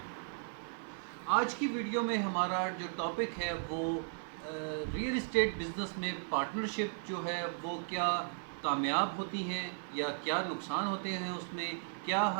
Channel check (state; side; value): silent; left; 54 dB below the other